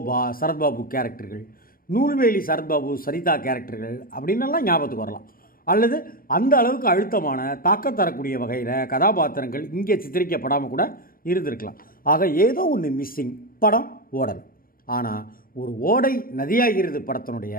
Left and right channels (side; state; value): right; late; 0.42 ms